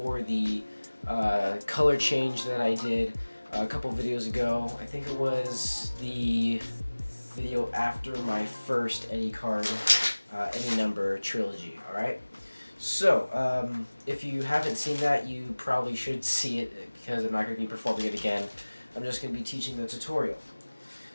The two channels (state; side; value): inverted; both; correlation -1.00